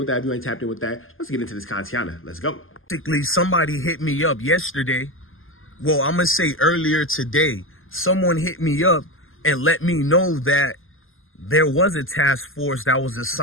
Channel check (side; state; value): right; late; 0.59 ms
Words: that if you ain't tapped in with that. Let's get into this contiana. Let's go. Basically, somebody hit me up yesterday. Well, I'm going to say earlier today. Someone hit me up and let me know that there was a task force that was